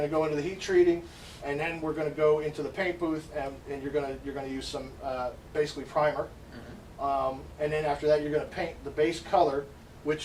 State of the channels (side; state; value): both; identical; correlation 1.00